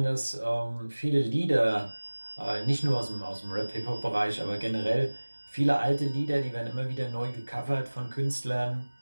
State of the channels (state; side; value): inverted; both; correlation -1.00